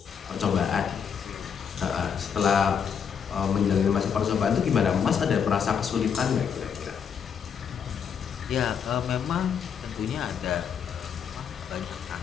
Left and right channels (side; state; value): right; quieter; 7.3 dB